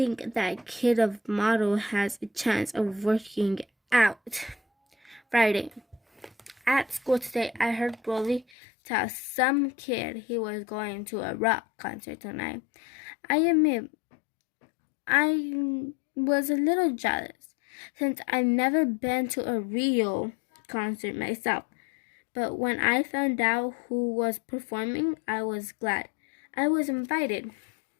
that kid of model has a chance of working out. Friday. At school today, I heard Rolly tell some kid he was going to a rock concert tonight. I admit, I was a little jealous since I've never been to a real concert myself. But when I found out who was performing, I was glad I was invited.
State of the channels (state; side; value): drops out; right; at 8.5 s